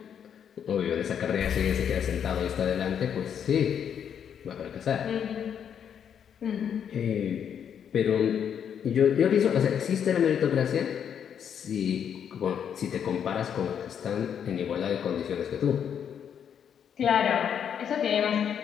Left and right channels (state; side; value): quieter; right; 8.3 dB